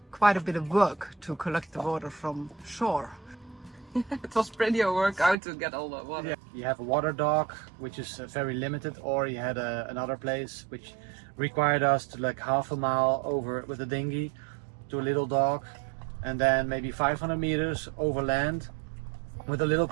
quite a bit of work to collect the water from shore. It was pretty a workout to get all the water. Yeah. You have a water dock, which is very limited, or you had another place which required us to like half a mile over with a dinghy to a little dock, and then maybe 500 meters over land with a little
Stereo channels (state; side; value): drops out; left; at 5.4 s